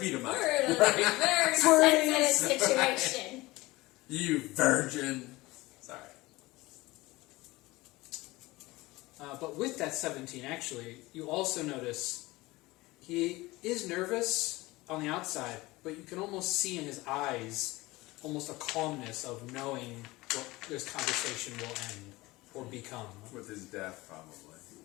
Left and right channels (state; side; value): quieter; right; 20.5 dB